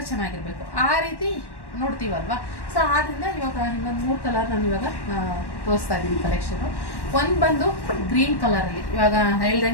ಚೆನ್ನಾಗಿರಬೇಕು. ಆ ರೀತಿ ನೋಡ್ತೀವಲ್ವಾ. ಸೊ ಆದ್ದರಿಂದ ಇವಾಗ ಇನ್ನೊಂದು 3 ಕಲರ್ ನಾನು ಇವಾಗ ತೋರಿಸ್ತಾ ಇದ್ದೀನಿ ಕಲೆಕ್ಷನು. ಒಂದು ಬಂದು ಗ್ರೀನ್ ಕಲರಲ್ಲಿ, ಇವಾಗ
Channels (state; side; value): late; right; 1.1 ms